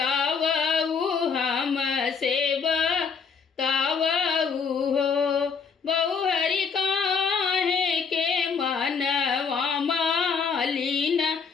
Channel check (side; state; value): right; quieter; 5.7 dB